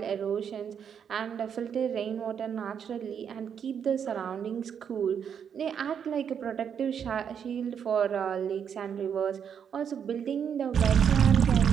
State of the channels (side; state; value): left; quieter; 7.8 dB